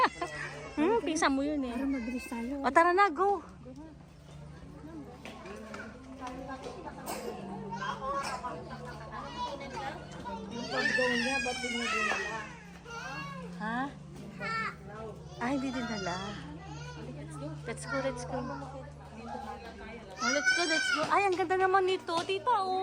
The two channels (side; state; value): both; identical; correlation 1.00